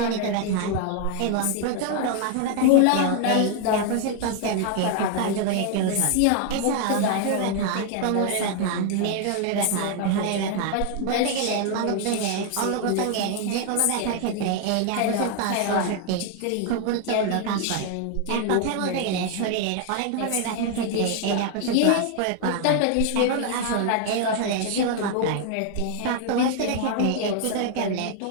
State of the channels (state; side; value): different; both; correlation 0.00